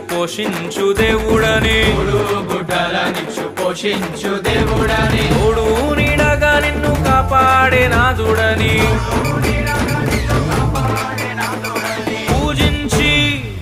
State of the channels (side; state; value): both; identical; correlation 1.00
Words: పోషించు దేవుడని తోడు నీడగా నిన్ను కాపాడే నాదుడని